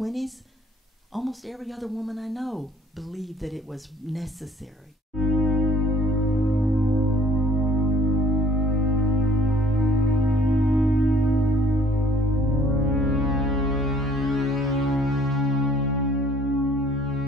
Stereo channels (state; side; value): normal; both; correlation 0.57